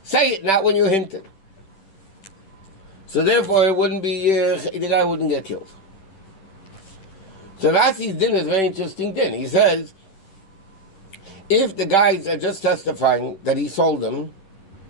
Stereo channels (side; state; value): right; late; 10 ms